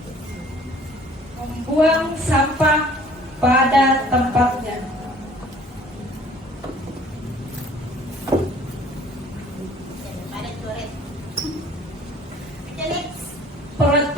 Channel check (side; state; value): both; normal; correlation 0.53